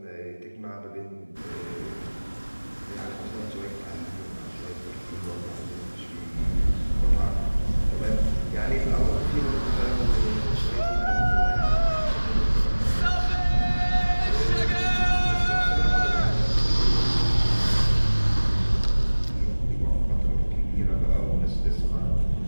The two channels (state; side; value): inverted; both; correlation -1.00